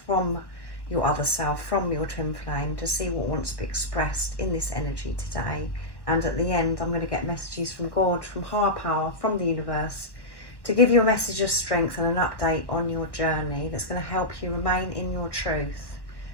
your other self, from your twin flame, to see what wants to be expressed in this energy today. And at the end, I'm going to get messages from God, from higher power, from the universe, to give you a message of strength and an update on your journey that's going to help you remain in your truth,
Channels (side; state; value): right; late; 1.1 ms